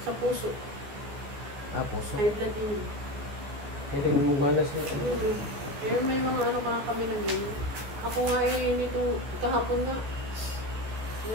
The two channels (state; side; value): late; left; 14 ms